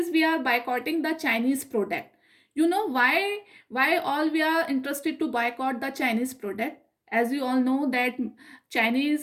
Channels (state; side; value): identical; both; correlation 1.00